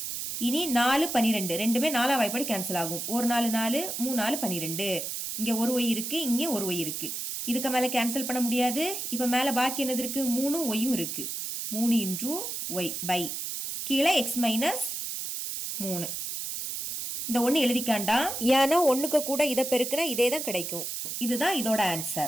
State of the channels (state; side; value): noise; right; hiss, 5 dB below the sound